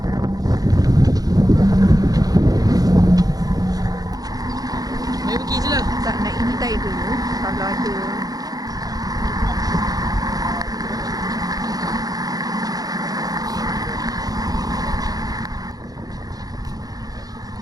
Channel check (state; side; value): late; left; 0.18 ms